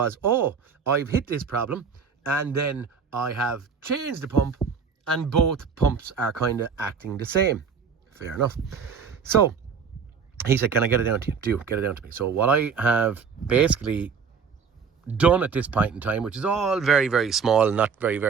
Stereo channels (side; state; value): left; quieter; 6.1 dB